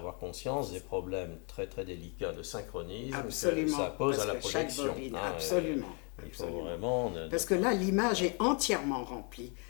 conscience des problèmes très très délicats de synchronisme que ça pose à la projection. Chaque bobine, absolument. Il faut vraiment... Parce que là, l'image est entièrement remplie.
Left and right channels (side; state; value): right; quieter; 35.6 dB